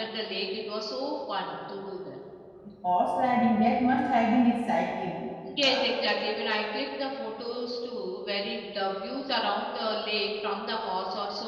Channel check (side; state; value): both; identical; correlation 1.00